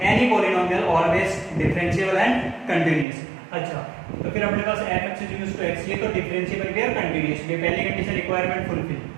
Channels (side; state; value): left; drops out; at 3.1 s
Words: any polynomial always differentiable and continuous. अच्छा, तो फिर अपने पास fx इक्वल्स टू x, ये तो डिफरेंशिएबल भी और कंटीन्यूअस भी, पहली कंडीशन रिक्वायरमेंट फुलफिल,